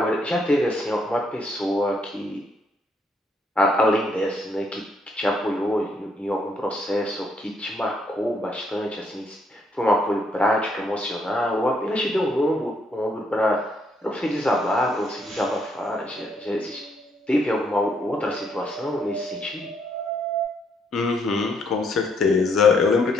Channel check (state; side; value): normal; both; correlation 0.72